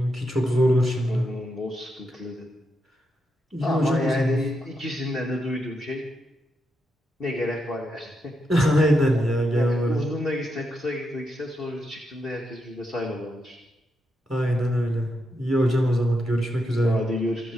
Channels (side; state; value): both; normal; correlation 0.83